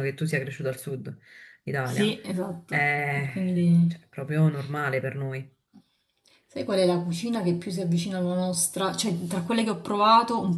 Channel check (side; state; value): both; identical; correlation 1.00